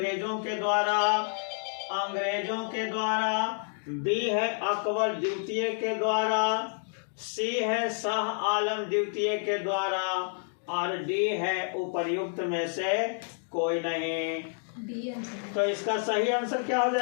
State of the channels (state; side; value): silent; right; 58 dB below the other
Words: के द्वारा, बी है अकबर द्वितीय के द्वारा, सी है शाह आलम द्वितीय के द्वारा और डी है उपर्युक्त में से कोई नहीं। तो इसका सही आंसर क्या हो